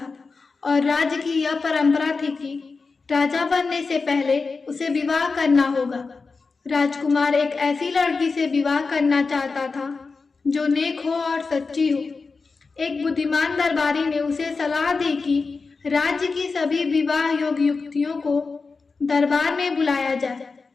और राज्य की यह परंपरा थी कि राजा बनने से पहले उसे विवाह करना होगा। राजकुमार एक ऐसी लड़की से विवाह करना चाहता था जो नेक हो और सच्ची हो। एक बुद्धिमान दरबारी ने उसे सलाह दी कि राज्य की सभी विवाह योग्य युवतियों को दरबार में बुलाया जाए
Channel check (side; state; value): right; quieter; 4.4 dB